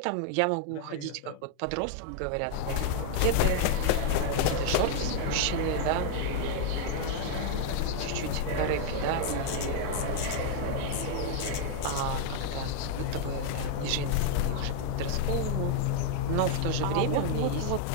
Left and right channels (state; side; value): different; both; correlation -0.01